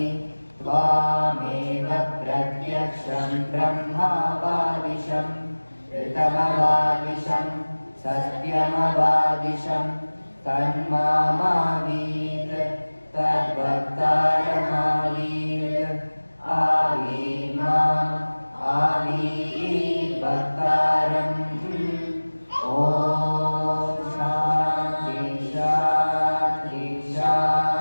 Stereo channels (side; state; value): both; inverted; correlation -1.00